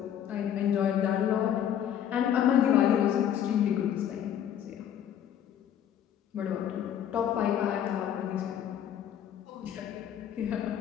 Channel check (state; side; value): quieter; right; 9.8 dB